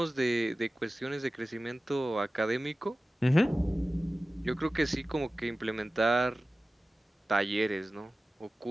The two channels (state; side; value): normal; both; correlation 0.96